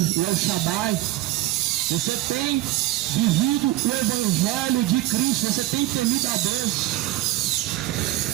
Shaddai. Você tem vivido o Evangelho de Cristo, você tem temido a Deus.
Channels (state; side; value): quieter; left; 16.3 dB